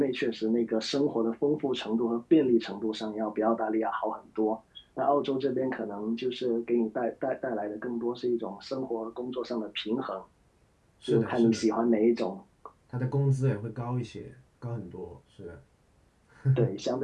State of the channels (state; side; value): identical; both; correlation 1.00